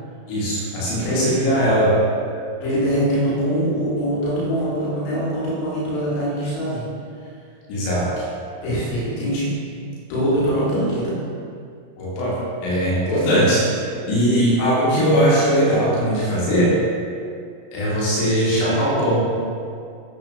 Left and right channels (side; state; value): right; late; 34 ms